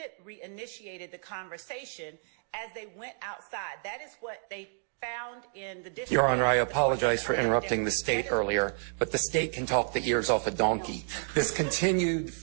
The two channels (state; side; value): silent; left; digital silence